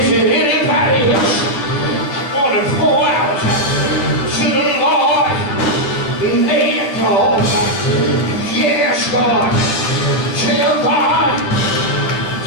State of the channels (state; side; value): late; right; 10 ms